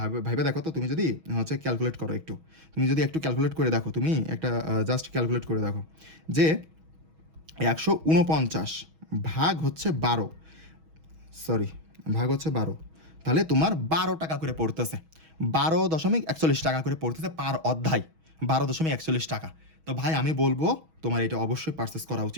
ভাবে দেখো তো। তুমি যদি হচ্ছে ক্যালকুলেট করো একটু, তুমি যদি একটু ক্যালকুলেট করে দেখো, তুমি একটা জাস্ট ক্যালকুলেট করে দেখো যে 149 ভাগ হচ্ছে 12, ভাগ হচ্ছে 12, তাহলে তোমার 12 টাকা করে পড়তেছে, 12.41 টাকা করে পড়তেছে পার অধ্যায়, 12.41 টাকা। তো ভাই আমি বলবো তোমার এটা অবশ্যই পারচেস করা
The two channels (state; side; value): late; left; 6.2 ms